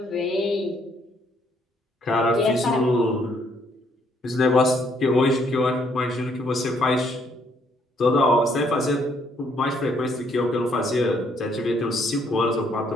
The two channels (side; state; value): both; normal; correlation 0.69